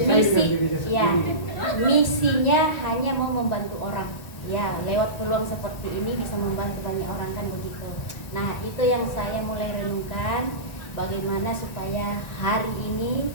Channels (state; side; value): late; right; 1.9 ms